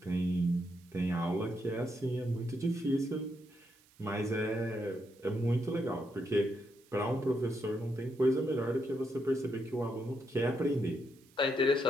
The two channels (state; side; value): noise; right; hiss, 29 dB below the sound